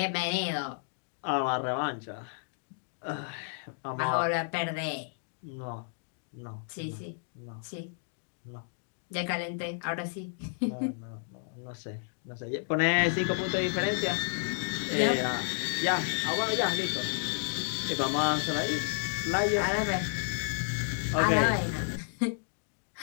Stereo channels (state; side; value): silent; right; digital silence